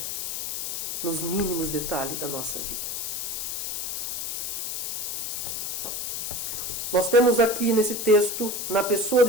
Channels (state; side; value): noise; left; hiss, 3 dB below the sound